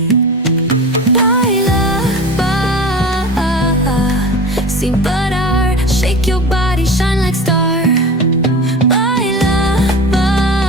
Baila, sin parar. Shake your body, shine like star. Baila,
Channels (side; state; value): both; normal; correlation 0.33